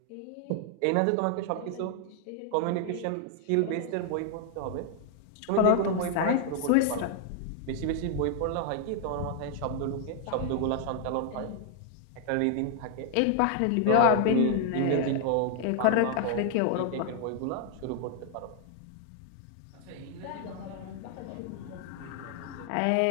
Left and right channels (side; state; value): both; different; correlation 0.00